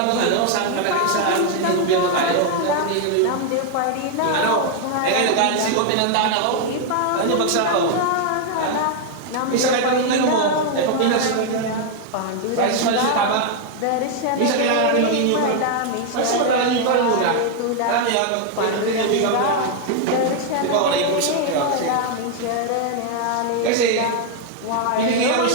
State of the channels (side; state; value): both; different; correlation 0.00